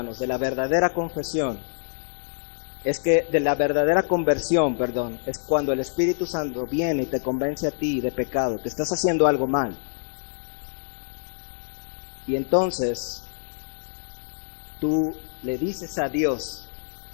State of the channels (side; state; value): right; silent; 61 dB below the other